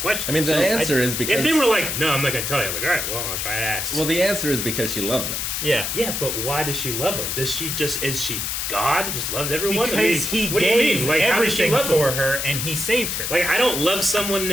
I mean, the answer is because if they were like, no, I'm not gonna tell you. I'm like, all right, well, I'll try to ask. well, the answer is because she loves him. Yeah. yeah, but why does she love him? Does she just is she God? Just loves everyone? Because I mean, he what do you gave mean? Like, how does she everything love him? for her and he saved her. Like, I don't love someone in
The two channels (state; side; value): noise; left; hiss, 2 dB below the sound